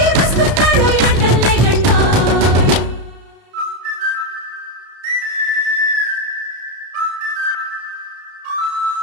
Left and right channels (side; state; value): left; late; 31 ms